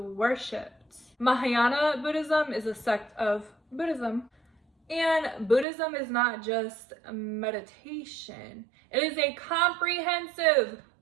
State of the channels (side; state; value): left; drops out; at 5.7 s